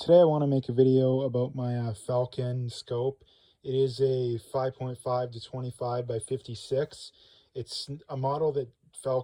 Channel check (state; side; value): identical; both; correlation 1.00